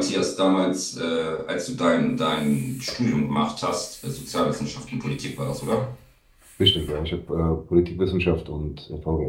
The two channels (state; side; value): identical; both; correlation 1.00